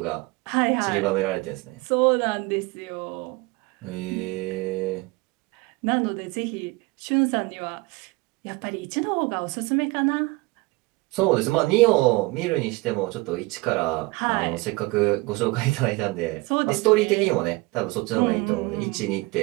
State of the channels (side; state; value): left; quieter; 24.0 dB